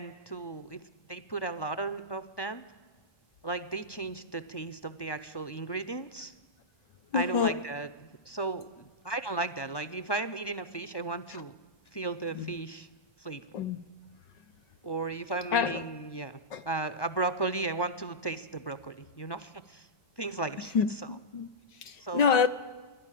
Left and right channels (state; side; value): late; right; 1.1 ms